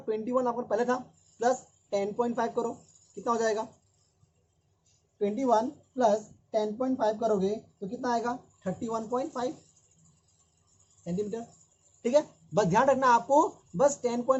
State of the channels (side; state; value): both; identical; correlation 1.00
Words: 21 आपका पहले था, प्लस 10.5 करो, कितना हो जाएगा, 21 प्लस 10.5 करोगे तो कितना आएगा, 31.5 सेंटीमीटर, ठीक है. बस ध्यान रखना आपको, बस